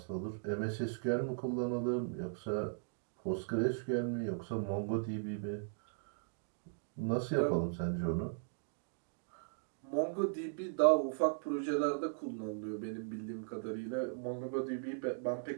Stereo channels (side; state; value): left; silent; digital silence